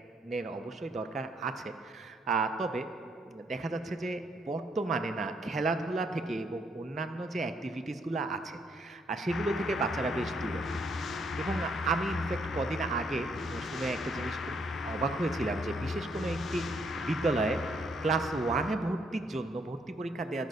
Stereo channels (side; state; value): both; normal; correlation 0.71